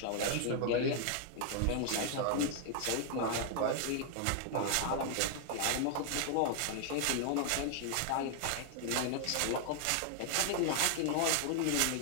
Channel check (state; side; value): different; both; correlation 0.00